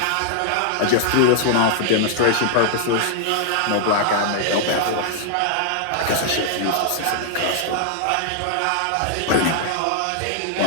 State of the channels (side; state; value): both; different; correlation -0.01